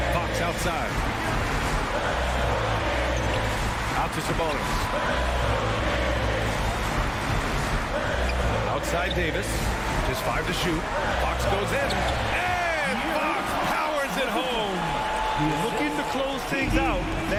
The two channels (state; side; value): identical; both; correlation 1.00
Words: Fox outside. Out to Sabonis. Outside Davis. Just 5 to shoot. Fox goes in. And Fox powers it home. Looking to close things out.